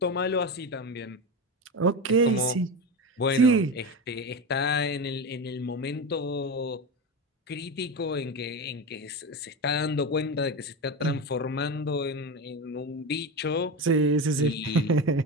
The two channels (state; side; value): normal; both; correlation 0.20